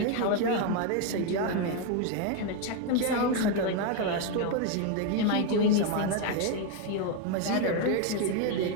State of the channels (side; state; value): both; different; correlation 0.01